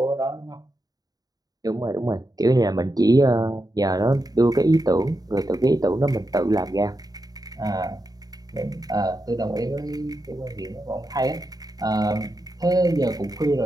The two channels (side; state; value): left; late; 0.18 ms